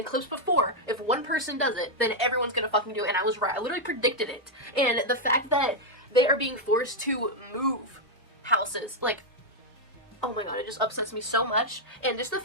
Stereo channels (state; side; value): normal; both; correlation -0.01